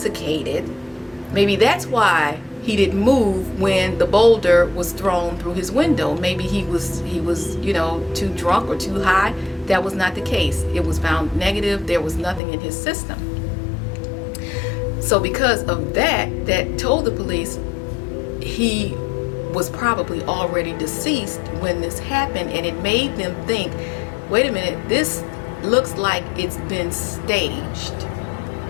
maybe that's why he didn't move when the boulder was thrown through his window. Maybe he was too drunk or too high. That was not the case. It was found negative. There was nothing in his system. So because of that told the police he was probably already deceased when this happened, and it made them think, wait a minute, this looks like it's been staged.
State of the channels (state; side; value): drops out; right; at 12.4 s